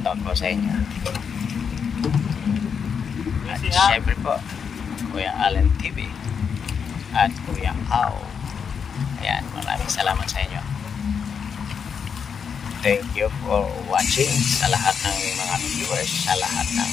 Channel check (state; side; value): quieter; right; 6.7 dB